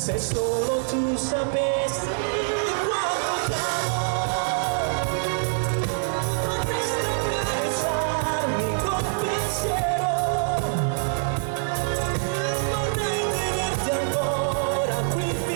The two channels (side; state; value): left; silent; 62 dB below the other